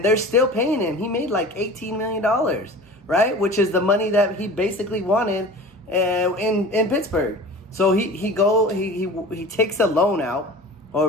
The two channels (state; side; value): normal; both; correlation 0.39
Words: they're still paying him. He made like $18 million, right? Which is the money that he basically wanted in Pittsburgh. So he takes a loan out,